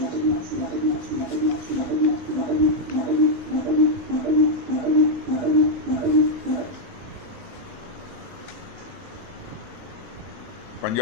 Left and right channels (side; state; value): both; normal; correlation -0.01